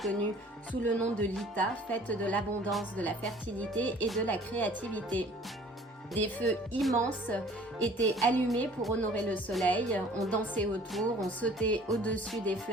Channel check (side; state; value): both; normal; correlation 0.51